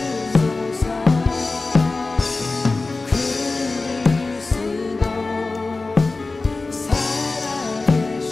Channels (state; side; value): quieter; right; 3.6 dB